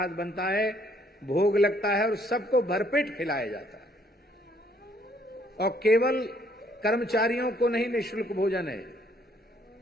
बनता है, भोग लगता है और सबको भरपेट खिलाया जाता है। और केवल कर्मचारियों को नहीं निःशुल्क भोजन है,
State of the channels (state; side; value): normal; both; correlation 0.66